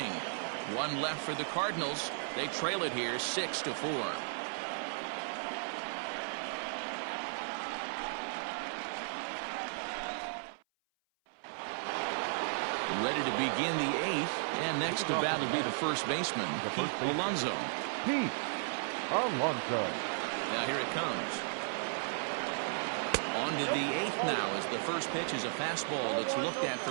1 left for the Cardinals. They trail it here 6-4. Ready to begin the 8th, and next to bat will be the first baseman, Pete Alonso. Pete Alonso. Now here it comes. On to the 8th now as the first pitch is a fastball that's looked at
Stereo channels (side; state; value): left; silent; 54 dB below the other